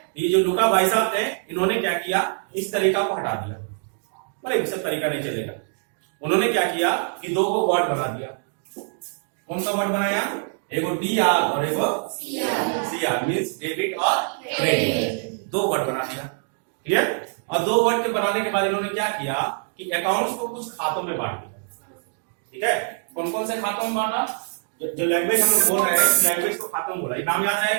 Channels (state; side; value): silent; left; 62 dB below the other